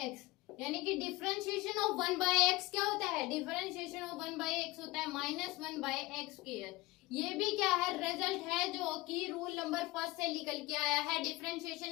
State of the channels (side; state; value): right; quieter; 20.2 dB